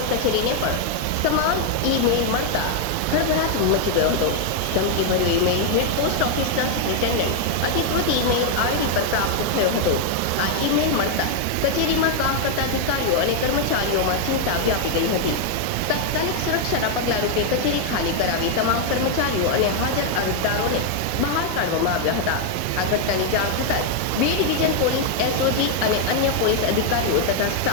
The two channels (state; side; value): different; both; correlation 0.00